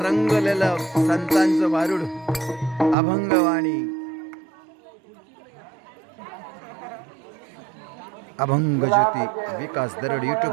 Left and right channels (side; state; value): left; drops out; at 3.0 s